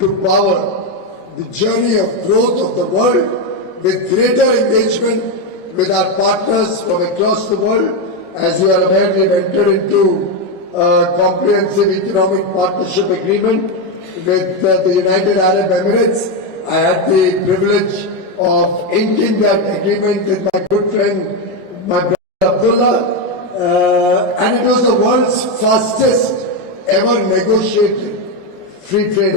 power the journey of growth of the world with greater engagement with our partners from across the world. As you are aware, we have entered into a comprehensive economic partnership agreement with the United Arab Emirates. I had the privilege of inking that agreement with my good friend, my brother Abdullah, and it was the world's fastest ever negotiated free trade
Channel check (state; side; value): late; left; 5.4 ms